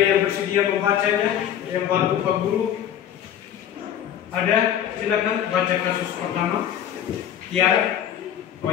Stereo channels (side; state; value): right; quieter; 10.2 dB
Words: bersedia membacanya, yang bantu Pak Guru. Ada, silakan baca kasus pertama. Tiara. Oh